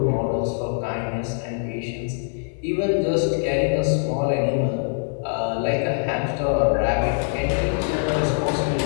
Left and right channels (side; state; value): right; silent; 63 dB below the other